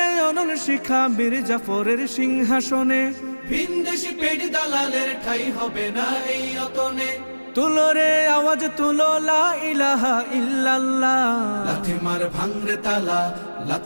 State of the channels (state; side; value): inverted; both; correlation -1.00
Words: অনল শিখা বীর জাফরের সিংহাসনে, ভিনদেশি পেট দালালের ঠাই হবে না এই অতনে। তুলো রে আওয়াজ তুলো লা ইলাহা ইল্লাল্লাহ। লাথি মার ভাঙরে তালা,